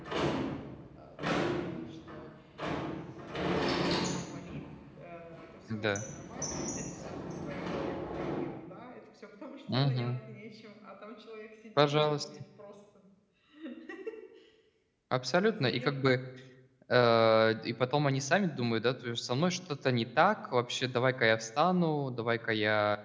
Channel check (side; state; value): both; identical; correlation 1.00